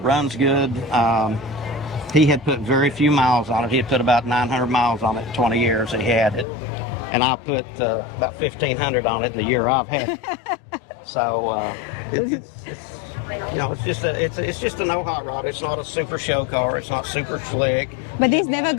runs good. He had put very few miles on it. He had put about 900 miles on it in 20 years that he had it, and I put about 1,500 on it in the year I've had it. So it's you know, it's just a no hot rod. It's not a super show car. It's not super slick. But these never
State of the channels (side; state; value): right; drops out; at 6.5 s